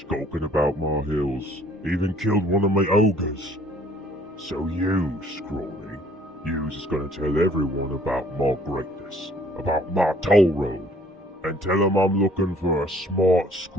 about my hills, Even killed one of my ogres. So you, Scrawny, yous is gonna tell everyone about my greatness, about my toll road, and tell them I'm looking for a smart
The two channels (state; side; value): normal; both; correlation 0.58